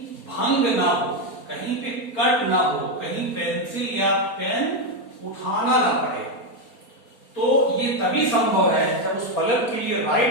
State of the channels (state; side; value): late; right; 4.3 ms